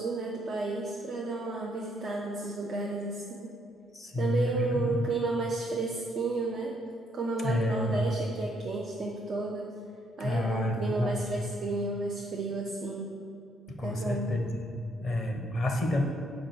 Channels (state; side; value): normal; both; correlation 0.71